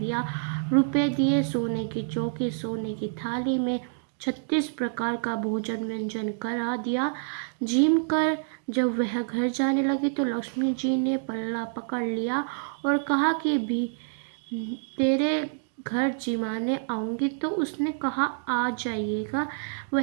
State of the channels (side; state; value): left; silent; digital silence